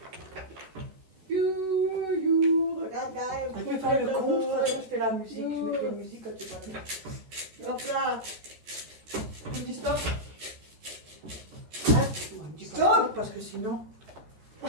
Regarde, regarde. Tu fais le compte, je fais la musique. Je mets la musique quand tu parles. Hop là. Tu dis stop? Hein? Dis pas Stop. parce que sinon...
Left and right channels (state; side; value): late; left; 13 ms